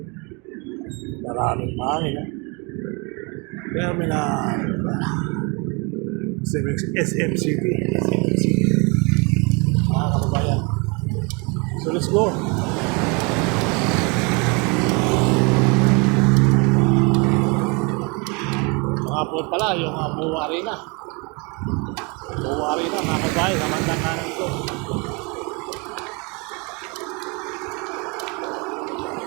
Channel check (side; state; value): left; quieter; 30.6 dB